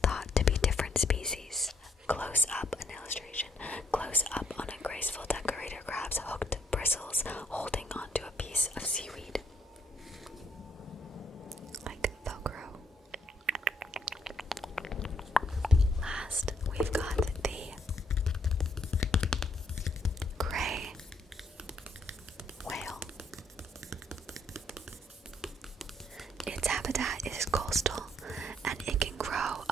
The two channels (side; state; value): both; normal; correlation 0.70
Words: thought to be different species. Close up an illustration. Close up on a graceful decorator crab's hooked bristles holding onto a piece of seaweed. Like Velcro. Last, we've got the gray whale. Its habitat is coastal, and it can grow